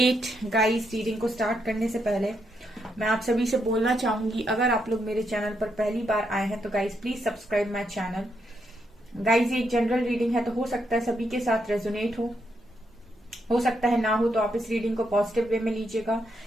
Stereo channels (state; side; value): normal; both; correlation 0.79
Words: Guys, reading को start करने से पहले मैं आप सभी से बोलना चाहूंगी, अगर आप लोग मेरे चैनल पर पहली बार आए हैं तो guys please subscribe my channel. Guys, ये एक जनरल रीडिंग है तो हो सकता है सभी के साथ रेजोनेट हो सकता है ना हो, तो आप इस रीडिंग को पॉजिटिव वे में लीजिएगा।